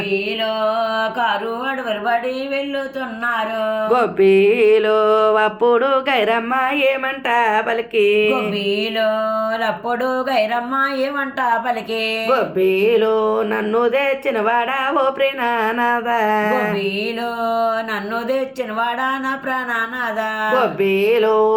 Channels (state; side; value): identical; both; correlation 1.00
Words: కారు అడవులు బడి వెళ్ళుతున్నారు. గొబ్బీలో అప్పుడు గైరమ్మ ఏమంట పలికి. గొబ్బీలో అప్పుడు గైరమ్మ ఏమంట పలికి. గొబ్బీలో నన్ను తెచ్చిన వాడా ఓ ప్రేణనాథ. గొబ్బీలో నన్ను తెచ్చిన వాడా నా ప్రాణనాథ. గొబ్బీలో